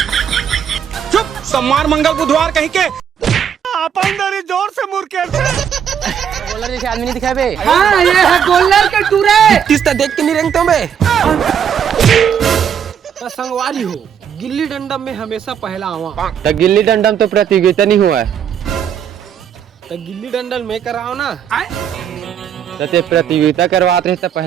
चुप सोमवार मंगल बुधवार कहीं के अपन दरी जोर से मुर्केट बोलर जैसे आदमी नहीं दिखाए बे। हाँ ये है गोल्डन के टूरे किसता देख के नहीं रेंगता मैं। तो संगवारी हो गिल्ली डंडा में हमेशा पहला आवा। तो गिल्ली डंडा में तो प्रतियोगिता नहीं हुआ है तो गिल्ली डंडल में कराओ ना। तो ते प्रतियोगिता करवाते रहे तो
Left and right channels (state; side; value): quieter; left; 8.3 dB